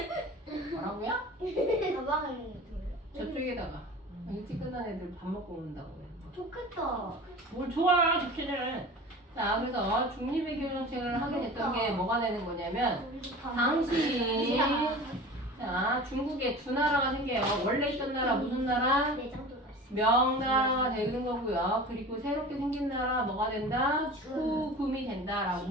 뭐라고요? 가방을 들어요. 저쪽에다가 일찍 끝난 애들 밥 먹고 온다고 그래. 좋겠다. 뭘 좋아, 좋기는. 자, 그래서 중립의 교정책을 하게 됐던 게 뭐가 되는 거냐면 당시 자, 중국에 두 나라가 생겨요. 원래 있던 나라 무슨 나라? 내장도 갔어. 명나라가 되는 거고요. 그리고 새롭게 생긴 나라 뭐가 된다? 후금이 된다라고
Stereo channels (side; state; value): both; normal; correlation 0.37